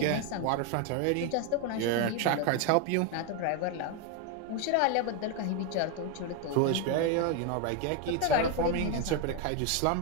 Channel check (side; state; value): both; different; correlation 0.01